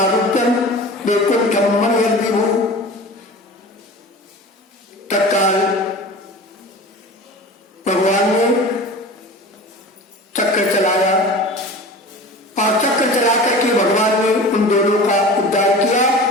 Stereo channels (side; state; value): both; normal; correlation 0.36